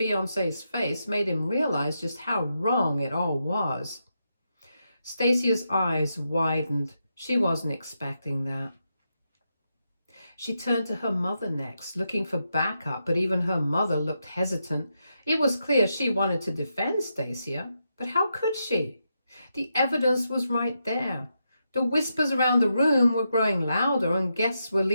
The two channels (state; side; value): inverted; both; correlation -0.84